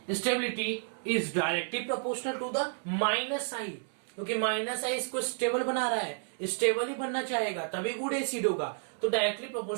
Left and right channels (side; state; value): left; silent; 57 dB below the other